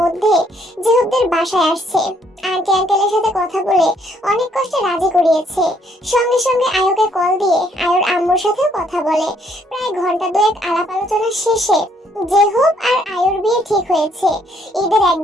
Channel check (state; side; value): normal; both; correlation 0.68